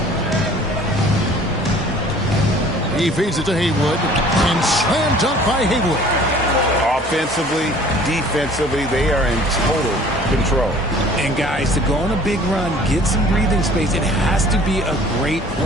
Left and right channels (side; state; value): both; normal; correlation 0.51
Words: He feeds it to Haywood. And slam dunk by Haywood. Offensively, defensively, they are in total control. And guys, to go on a big run, get some breathing space, it has to be a great